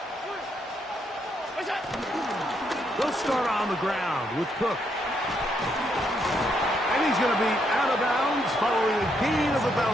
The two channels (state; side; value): normal; both; correlation 0.76